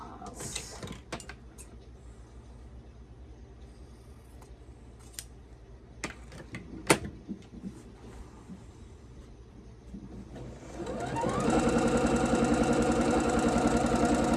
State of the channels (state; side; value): identical; both; correlation 1.00